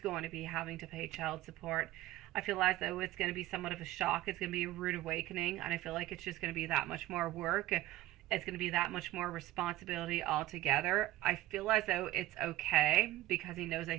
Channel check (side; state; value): left; quieter; 16.1 dB